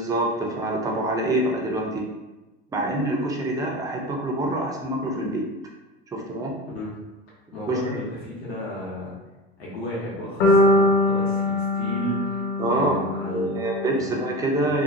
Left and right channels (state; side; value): normal; both; correlation 0.29